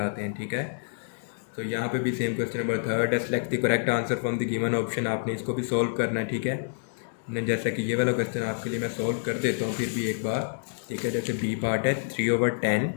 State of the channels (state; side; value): silent; right; digital silence